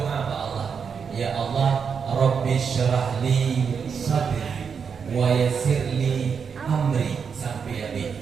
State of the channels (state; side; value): quieter; left; 6.4 dB